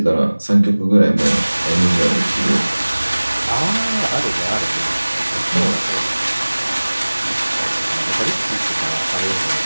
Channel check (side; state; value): both; inverted; correlation -1.00